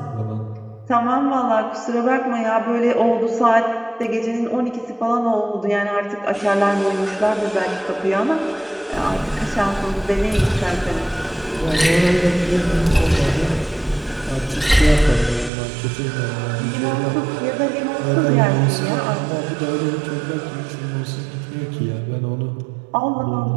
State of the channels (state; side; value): drops out; left; at 15.5 s